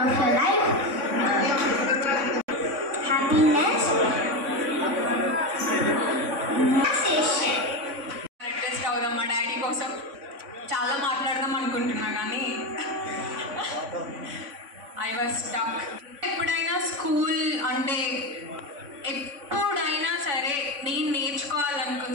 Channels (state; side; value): late; left; 3.6 ms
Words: of your life happiness, relaxation. Adjust అవుదాం మా డాడీ కోసం చాలా మాట్లాడదాం అనుకుంటున్నా కానీ ఐ వాజ్ స్టక్. ఎప్పుడైనా స్కూల్ అంటే ఎప్పుడైనా సరే నేను